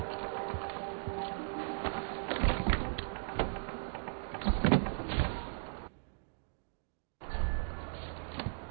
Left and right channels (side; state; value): left; silent; digital silence